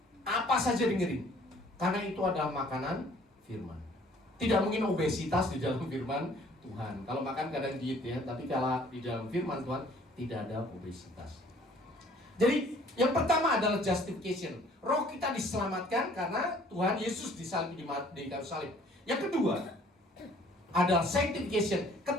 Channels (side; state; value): both; normal; correlation 0.57